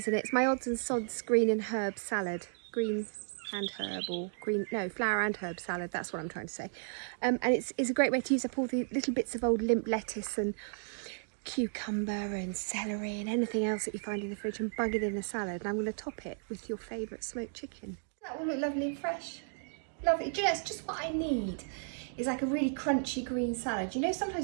in it. It's my odds and sods green and herb salad. Green and herb, or green, no, flower and herb salad, that's what I'm trying to say. And it's a great way to use up all the little bits of old limp lettuce and cucumber and celery and anything else that you find in the fridge and bung it in a salad. And I'm going to top it with your favourite smoked chicken. That will look lovely and fresh. Lovely. Do you know, it's just what I need. It's like a really crunchy green salad. You know,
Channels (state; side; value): silent; left; digital silence